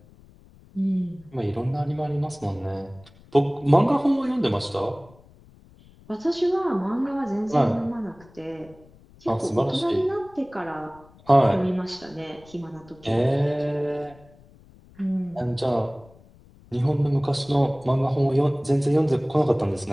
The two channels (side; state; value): left; noise; rumble, 25 dB below the sound